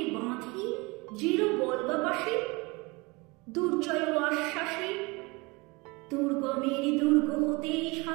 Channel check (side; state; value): left; quieter; 25.7 dB